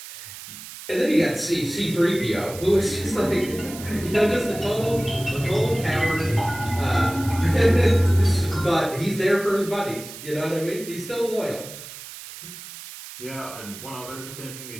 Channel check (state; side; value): noise; right; hiss, 13 dB below the sound